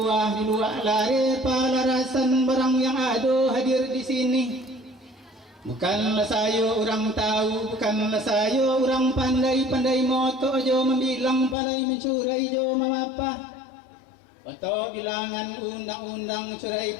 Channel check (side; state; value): right; drops out; at 11.6 s